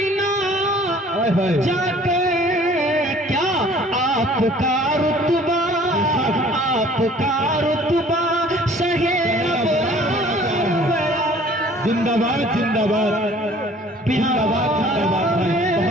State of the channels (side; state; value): both; normal; correlation 0.52